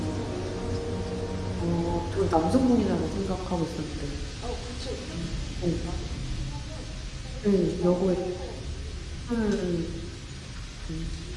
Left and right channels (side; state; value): both; identical; correlation 1.00